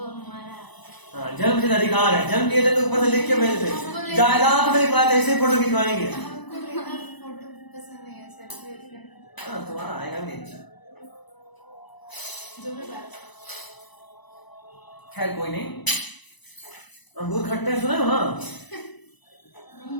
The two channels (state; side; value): late; right; 1.0 ms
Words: हमारा। हाँ जन्मसिद्ध अधिकार है, जन्म लिए थे तो ऊपर से लिख के भेजते, जायदाद में लिखवाए ऐसे फोटो खिंचवाएंगे। हमको लेना फोटो पसंद नहीं है, सेल्फी। हाँ तुम्हारा आएगा भी अच्छा। जो भी बात। खैर कोई नहीं। अंगूर खट्टे सुने हो ना? नहीं